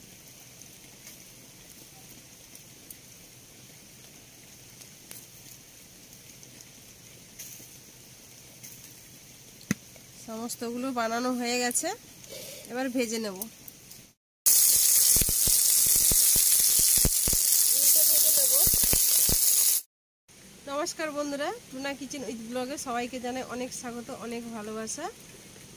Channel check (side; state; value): both; identical; correlation 1.00